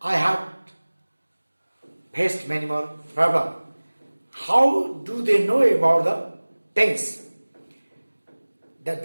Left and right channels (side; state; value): both; inverted; correlation -1.00